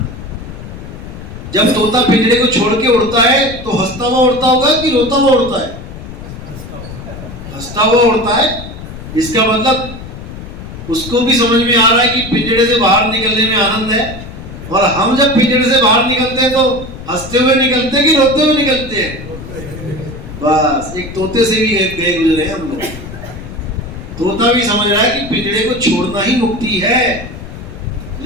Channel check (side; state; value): left; noise; rumble, 12 dB below the sound